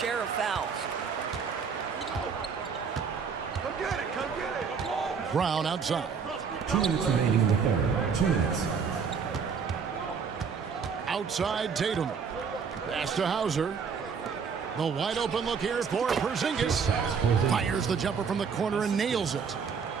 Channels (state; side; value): quieter; left; 6.1 dB